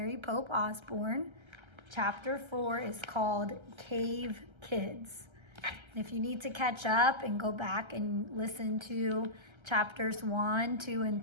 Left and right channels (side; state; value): left; late; 1.3 ms